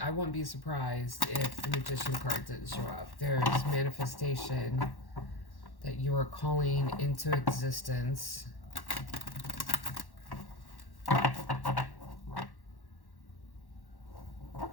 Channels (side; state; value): right; late; 1.1 ms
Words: I wouldn't be surprised if the Magician card didn't show up. There's manifestation that you are calling into existence.